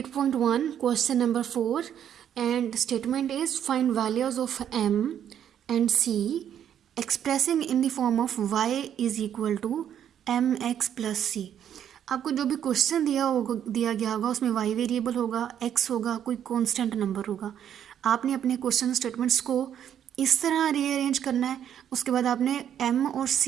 question number 4, and statement is find values of m and c expressing in the form of y is equal to mx plus c. आपको जो भी क्वेश्चन दिया गया होगा उसमें y वेरिएबल होगा, x होगा, कोई कांस्टेंट नंबर होगा. आपने अपने क्वेश्चन स्टेटमेंट्स को इस तरह रीअरेंज करना है. उसके बाद आपने m और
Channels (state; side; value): quieter; left; 9.7 dB